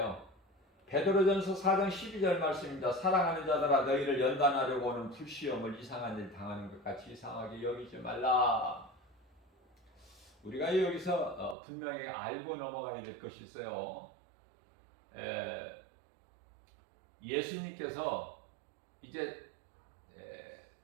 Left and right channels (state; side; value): drops out; left; at 11.6 s